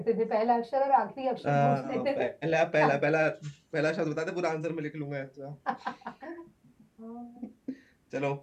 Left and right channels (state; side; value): identical; both; correlation 1.00